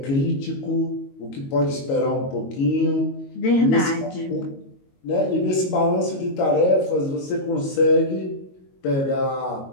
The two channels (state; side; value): late; right; 22 ms